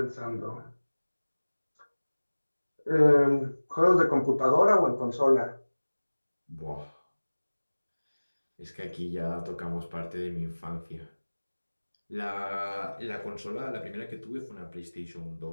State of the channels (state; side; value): inverted; both; correlation -1.00